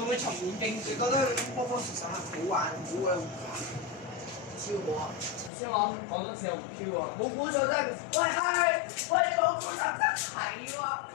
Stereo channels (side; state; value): right; drops out; at 5.5 s